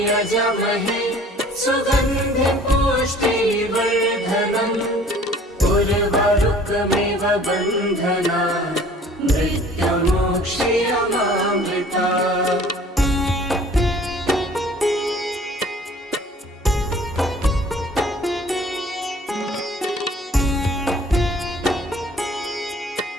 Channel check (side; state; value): both; normal; correlation 0.51